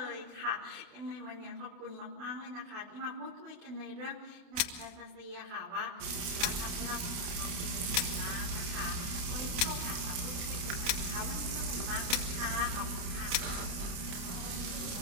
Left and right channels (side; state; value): left; late; 29 ms